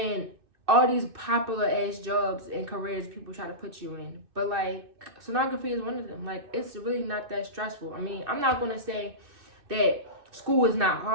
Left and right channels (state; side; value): late; left; 2.6 ms